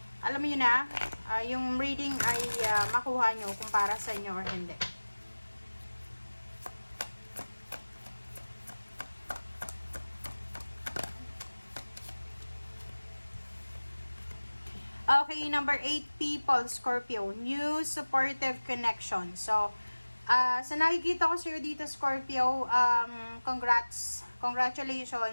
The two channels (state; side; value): inverted; both; correlation -1.00